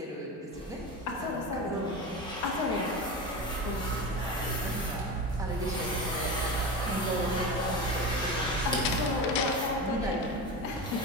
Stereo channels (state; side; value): normal; both; correlation 0.25